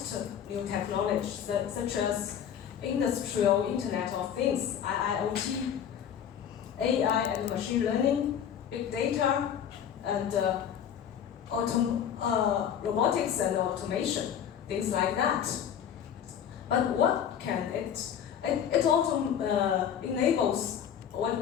new technologies such as industrial Internet of Things, IIoT, AI and machine learning, big data, and robotics and automation, things like that. But what can it? It also enables what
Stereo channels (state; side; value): quieter; right; 8.9 dB